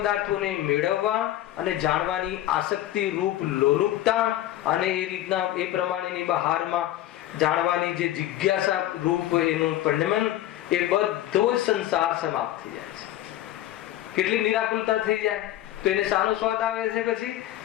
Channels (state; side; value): quieter; right; 13.7 dB